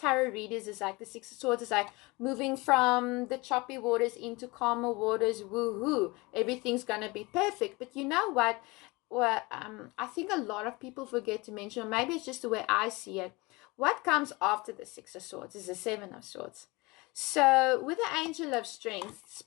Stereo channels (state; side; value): quieter; right; 24.3 dB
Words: readers is like the Six of Swords is like moving from the choppy waters into calmer waters. Woohoo! Everything's going to be perfect. But you know what? Well, I think a lot of people forget to mention, or maybe it's just the way I see it. What comes after the Six of Swords is the Seven of Swords. So with the Angel of Strength,